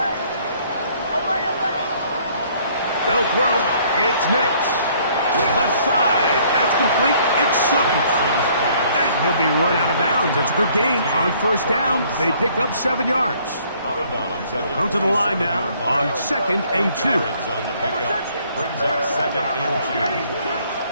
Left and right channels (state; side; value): inverted; both; correlation -0.61